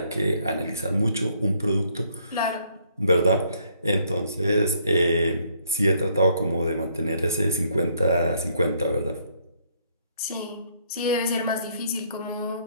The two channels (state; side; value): inverted; both; correlation -0.68